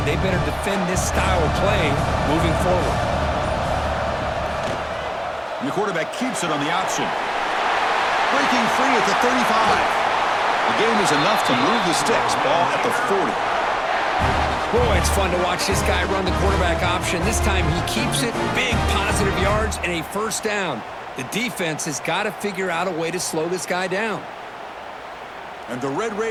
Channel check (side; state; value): both; identical; correlation 1.00